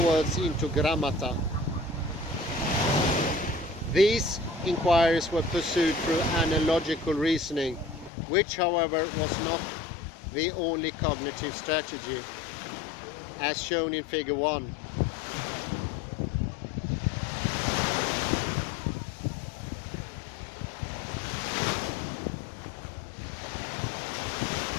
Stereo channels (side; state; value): right; drops out; at 8.1 s